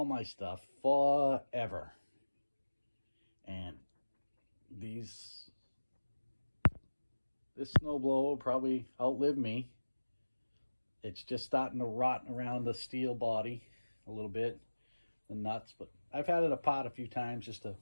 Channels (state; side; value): inverted; both; correlation -1.00